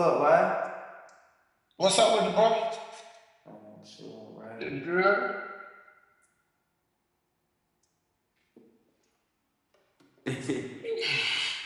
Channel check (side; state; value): both; identical; correlation 1.00